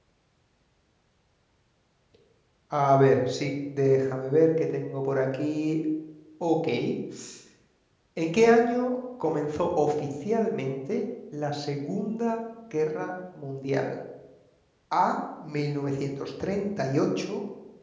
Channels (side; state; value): both; identical; correlation 1.00